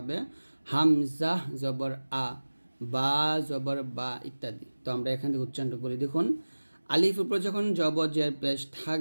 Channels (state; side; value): inverted; both; correlation -1.00